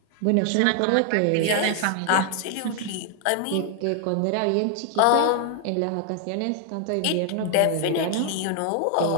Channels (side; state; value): both; different; correlation 0.00